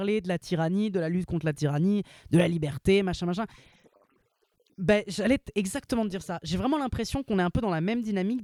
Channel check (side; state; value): both; identical; correlation 1.00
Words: de la tyrannie, de la lutte contre la tyrannie, de la liberté, machin. Par instant, ça m'a rappelé un peu Megalopolis. Ben, j'allais exactement dire ça. J'ai vraiment l'impression qu'on est un peu dans la même dynamique